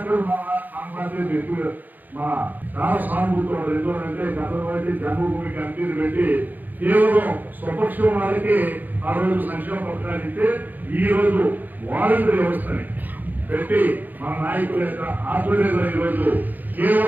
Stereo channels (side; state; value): left; late; 0.085 ms